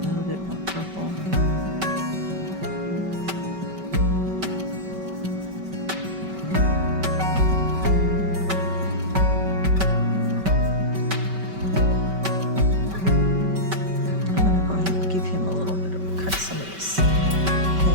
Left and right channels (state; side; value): late; left; 5.2 ms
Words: little bit more purple. I'm going to go ahead and give him a little bit of cut some of this